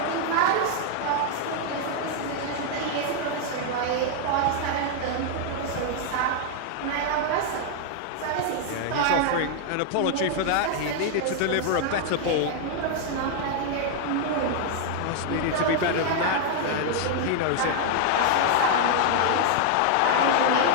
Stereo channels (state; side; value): different; both; correlation 0.00